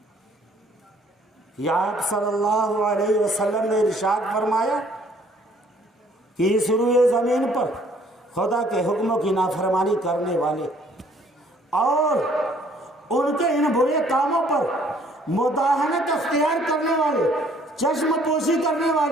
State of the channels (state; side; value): normal; both; correlation 0.60